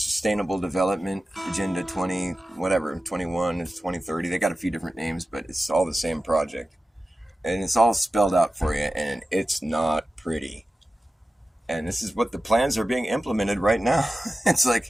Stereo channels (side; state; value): both; normal; correlation 0.94